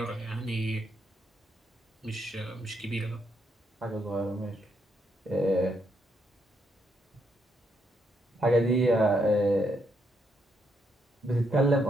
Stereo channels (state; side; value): normal; both; correlation 0.76